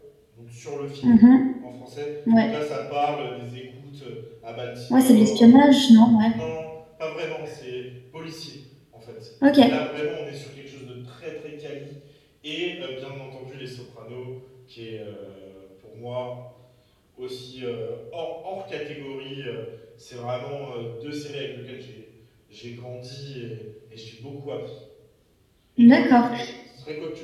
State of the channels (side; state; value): both; identical; correlation 1.00